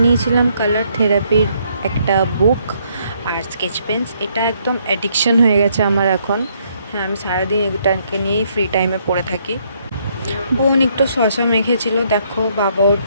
নিয়েছিলাম কালার থেরাপির একটা বুক আর স্কেচ পেন্স। এটা একদম অ্যাডিকশন হয়ে গেছে আমার এখন। হ্যাঁ, আমি সারাদিন এটাকে নিয়েই ফ্রি টাইমে পড়ে থাকি। বোন একটু শশা মেখেছিল, দেখো বাবা ওর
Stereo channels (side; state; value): both; inverted; correlation -0.71